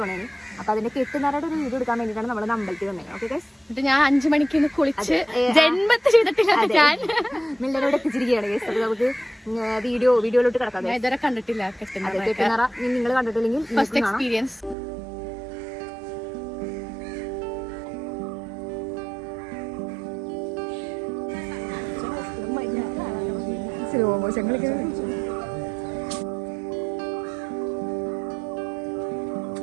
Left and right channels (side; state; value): left; drops out; at 14.8 s